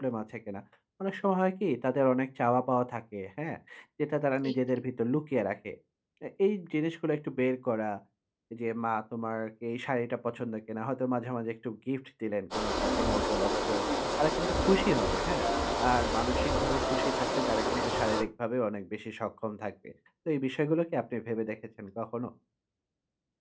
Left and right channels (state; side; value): identical; both; correlation 1.00